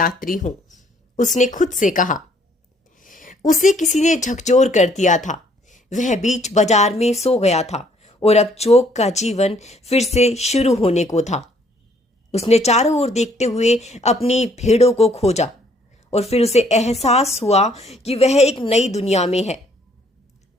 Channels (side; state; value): both; normal; correlation 0.64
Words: हूं, उसने खुद से कहा। उसे किसी ने झकझोर कर दिया था। वह बीच बाजार में सो गया था और अब चौक का जीवन फिर से शुरू होने को था। उसने चारों ओर देखते हुए अपनी भेड़ों को खोजा और फिर उसे एहसास हुआ कि वह एक नई दुनिया में है।